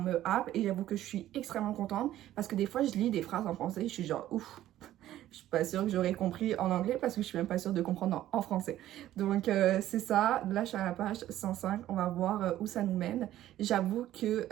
happe, et j'avoue que je suis extrêmement contente parce que des fois je lis des phrases en français et je suis genre ouf, je suis pas sûre que j'aurais compris en anglais parce que je suis même pas sûre de comprendre en français. Donc c'est ça, là je suis à la page 105, on va voir où ça nous mène. J'avoue que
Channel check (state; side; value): quieter; left; 13.4 dB